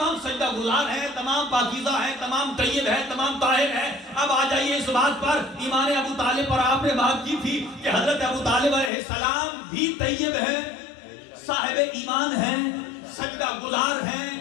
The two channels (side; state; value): right; drops out; at 8.9 s